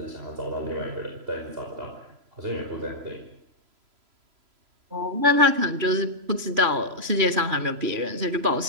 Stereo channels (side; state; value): left; late; 3.0 ms